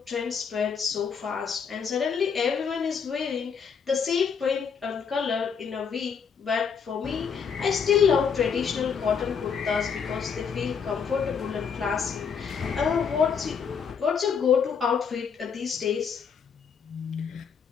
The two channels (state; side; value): quieter; right; 6.5 dB